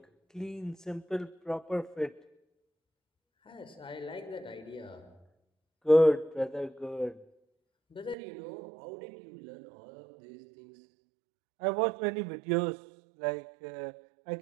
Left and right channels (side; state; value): left; drops out; at 8.2 s